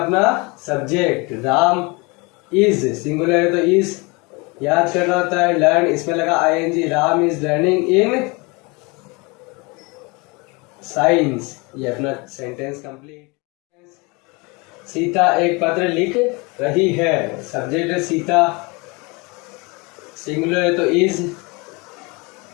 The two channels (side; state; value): right; quieter; 27.6 dB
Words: सब्जेक्ट। राम इज, सिंगुलर है तो इज। याद करना होता है लर्न, इसमें लगा i n g. Ram is learning in science. ये अपना सेंटेंस कंप्लीट। सीता एक पत्र लिख रही है, सब्जेक्ट है सीता, सिंगुलर है तो इज।